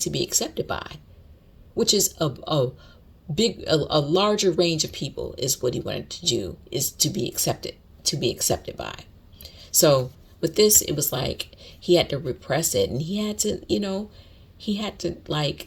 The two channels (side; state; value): both; identical; correlation 1.00